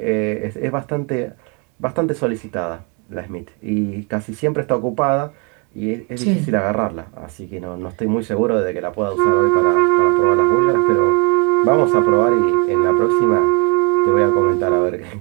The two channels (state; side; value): quieter; left; 34.0 dB